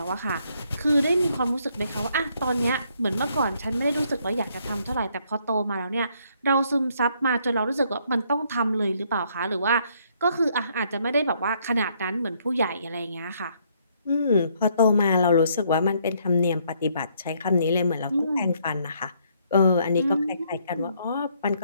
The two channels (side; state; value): both; inverted; correlation -0.69